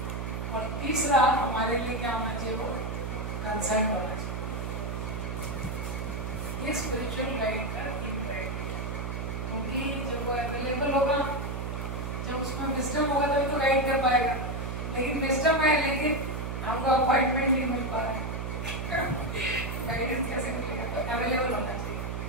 और तीसरा, हमारे लिए क्या होना चाहिए? वो कंसर्न होना चाहिए। ये स्पिरिचुअल गाइड का 3 क्राइटेरिया। क्योंकि जब वो अवेलेबल होगा, जब उसमें विजडम होगा तभी तो गाइड कर पाएगा। लेकिन विजडम है लेकिन हमको अपॉइंटमेंट नहीं मिल पा रहा है, गाइडेंस कैसे मिलेगा? तो अवेलेबल होना चाहिए।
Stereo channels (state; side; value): noise; right; hum, 4 dB below the sound